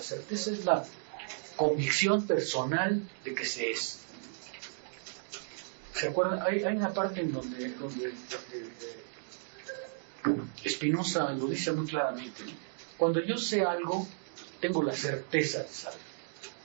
certeza es la convicción personal de que se es. ¿Se acuerdan? Hay una parte en donde Spinoza lo dice muy claramente, ¿no? Cuando yo sé algo, tengo la certeza de saber.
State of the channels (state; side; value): silent; left; digital silence